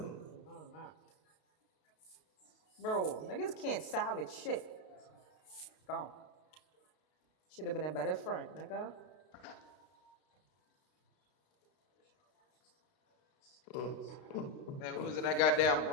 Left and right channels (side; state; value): right; late; 32 ms